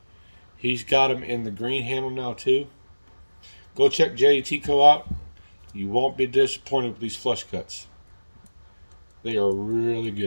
He's got them in the green handle now too. Go check JD Tico out. You won't be disappointed with these flush cuts. They are really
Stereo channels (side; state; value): both; inverted; correlation -1.00